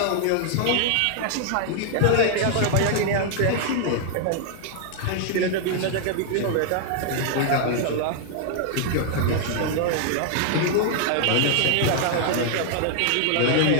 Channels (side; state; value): both; different; correlation 0.00